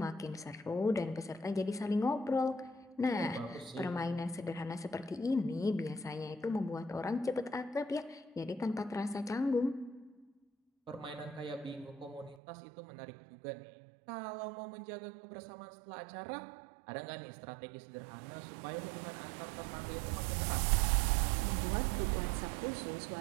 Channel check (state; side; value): drops out; left; at 12.4 s